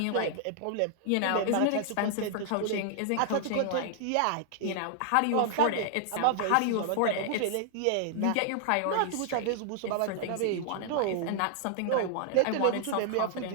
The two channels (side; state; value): both; different; correlation 0.00